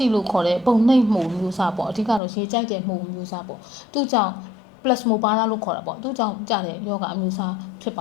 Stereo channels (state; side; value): drops out; right; at 2.2 s